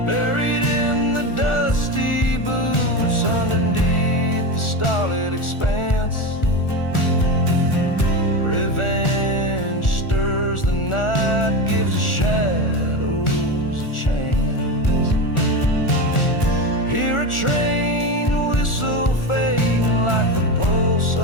Buried in the dusty boots underneath the starlit expanse, revenge stirs the night, gives the shadows a chance. Hear a train whistle fading like the pulse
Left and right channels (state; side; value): late; right; 1.4 ms